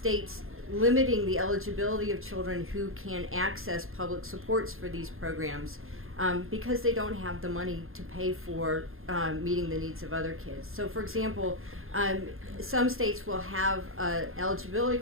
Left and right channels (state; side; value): late; left; 0.61 ms